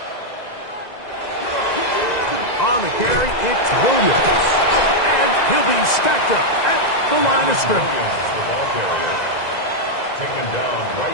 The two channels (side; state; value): right; late; 2.0 ms